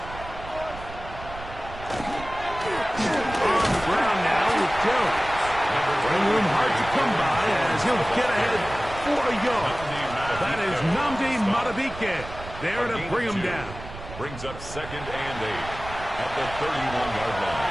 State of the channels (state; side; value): noise; right; rumble, 13 dB below the sound